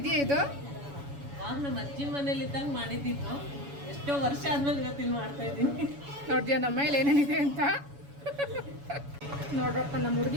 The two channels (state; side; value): late; left; 7.1 ms